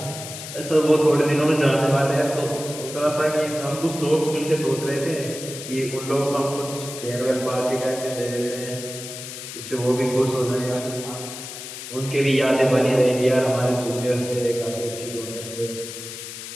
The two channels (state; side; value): noise; left; hiss, 10 dB below the sound